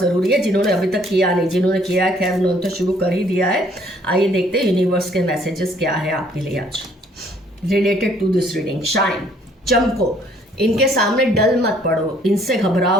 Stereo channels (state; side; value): normal; both; correlation 0.62